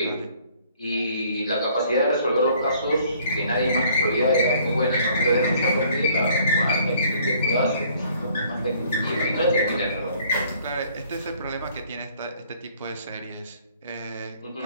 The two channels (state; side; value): inverted; both; correlation -0.59